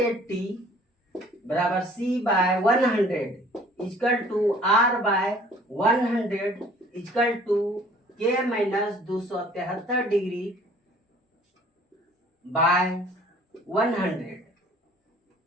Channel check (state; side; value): normal; both; correlation 0.54